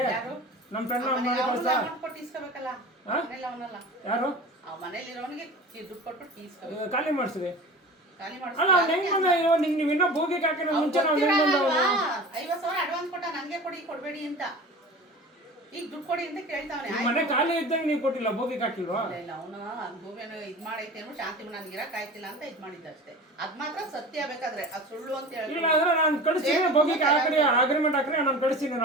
ನಮ್ಮ ಫ್ರೆಂಡ್ ಕಳಿಸ್ಲಾ? ಯಾರು ಖಾಲಿ ಮಾಡಿಸ್ರಿ. ಅಲ್ಲ ನೀವು ಇನ್ನೂ ಭೋಗಿಗೆ ಹಾಕಿರೋ ಮುಂಚೆ ನಾವು ಹೆಂಗ್ ಬಂದವ? 50,000 ಅಡ್ವಾನ್ಸ್ ಕೊಟ್ಟ, ನನಗೆ ಕೊಡಬೇಡಿ ಅಂತ. ಈಗ ದುಡ್ಡು ಕೊಡಿ ಅಂತ ಕೇಳ್ತಾವನೆ. ಮನೆ ಖಾಲಿ ಇದ್ದಂಗೆ ನೀವು ಕೊಟ್ಟಿಲ್ಲ, ಭೋಗಿಗೆ ಹಾಕಿಲ್ವಾ? ಇಲ್ಲ, ಅವನು ಭೂಮಿಯನ್ನು ಇದ್ ಮಾಡೈತೆ ಅನ್ನೋ ಶಾಂತಿ ನನಗೆ ಇರಕ್ ಆಯ್ತಿಲ್ಲ ಅಂತ ಇದ್ ಮಾಡಿದ್ದಷ್ಟೇ. ಅದ್ ಮಾತ್ರ ಸತ್ಯ. ಬೇಕಾದ್ರೆ ಅದು ಸುಳ್ಳು ಅಂತ ಹೇಳಿ ಇಲ್ಲ ಅಂದ್ರೆ ನಾನು ಕಳಿಸ್ತೀನಿ, ಭೋಗಿಗೆ ಹಾಕಿ ಅಗ್ರಿಮೆಂಟ್ ಹಾಕ್ರಿ, ನಾನು ಕಳಿಸ್ತೀನಿ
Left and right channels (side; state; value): both; normal; correlation 0.36